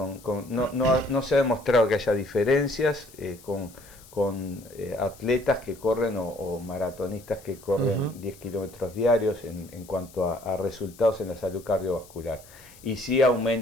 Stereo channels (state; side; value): noise; left; hiss, 23 dB below the sound